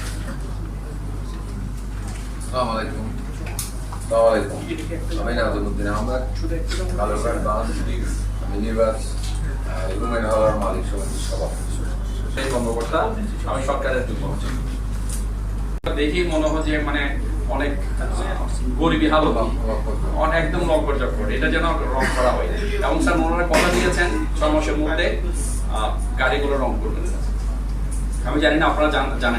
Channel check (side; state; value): both; identical; correlation 1.00